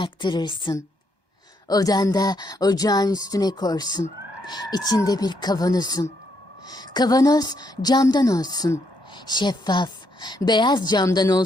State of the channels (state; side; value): late; right; 1.2 ms